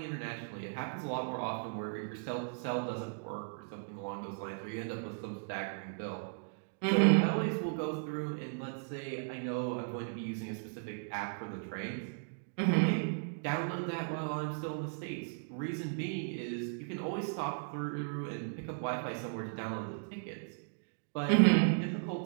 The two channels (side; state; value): left; silent; digital silence